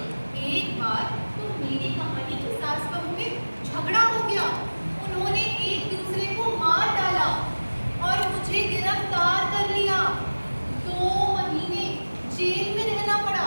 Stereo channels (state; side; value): inverted; both; correlation -1.00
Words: एक बार तो मेरी कहानी के सास बहू में झगड़ा हो गया। उन्होंने एक दूसरे को मार डाला और मुझे गिरफ्तार कर लिया। 2 महीने जेल में रहना